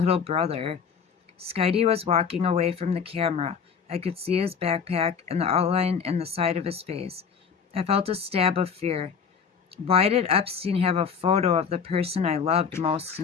brother. Skidey was walking away from the camera. I could see his backpack and the outline in the side of his face. I felt a stab of fear. Why did Epstein have a photo of the person I loved most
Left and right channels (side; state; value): right; quieter; 6.5 dB